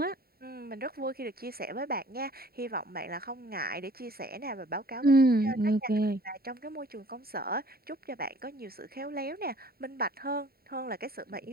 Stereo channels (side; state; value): left; late; 0.44 ms